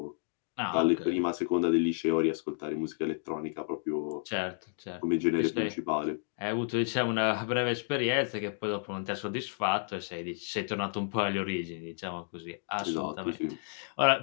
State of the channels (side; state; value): right; silent; digital silence